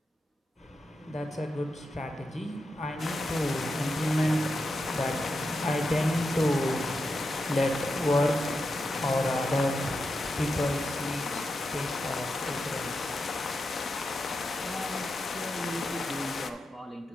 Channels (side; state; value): both; normal; correlation 0.88